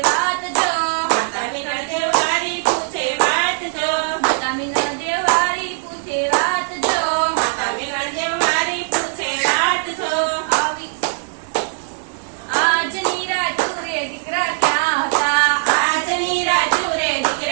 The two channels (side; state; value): left; silent; digital silence